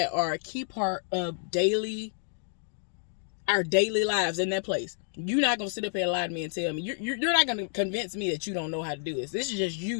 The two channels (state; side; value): silent; right; digital silence